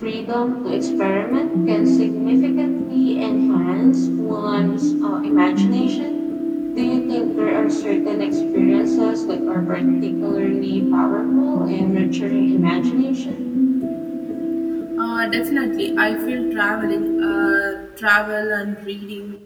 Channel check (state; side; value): identical; both; correlation 1.00